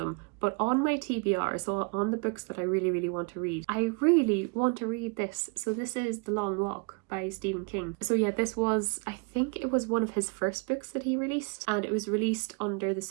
but on my TBR, so on the books that I really want to read, I really want to read this. So this is The Long Walk by Stephen King. So yeah, this was, I think it was one of his first books that he released, and it was released under the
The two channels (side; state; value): left; quieter; 32.3 dB